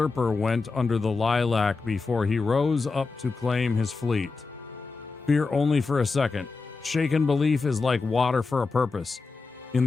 went under the lilac before he rose up to claim his fleet. Fear only for a second. Shaken belief is like water for a purpose. In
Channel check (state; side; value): quieter; right; 4.2 dB